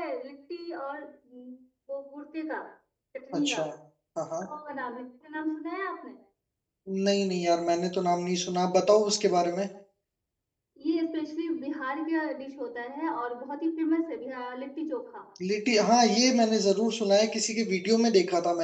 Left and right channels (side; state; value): both; identical; correlation 1.00